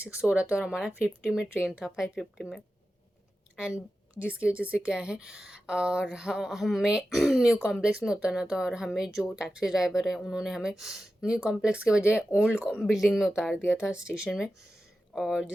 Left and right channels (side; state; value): both; normal; correlation 0.93